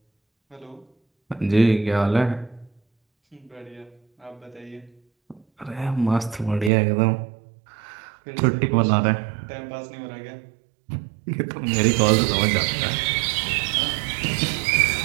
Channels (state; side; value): drops out; left; at 6.7 s